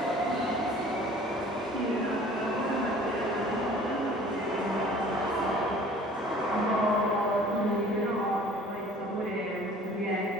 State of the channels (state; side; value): normal; both; correlation 0.49